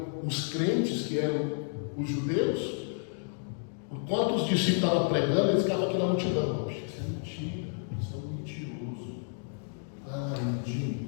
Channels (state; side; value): silent; right; 57 dB below the other